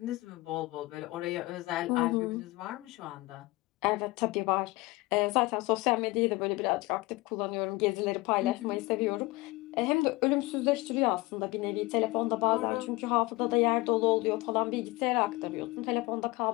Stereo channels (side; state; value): right; quieter; 21.7 dB